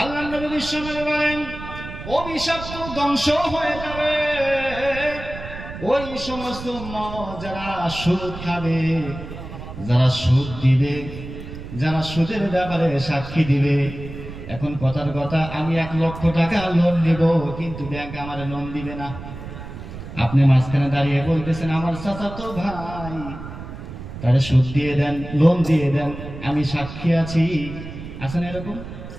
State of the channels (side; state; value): right; noise; rumble, 11 dB below the sound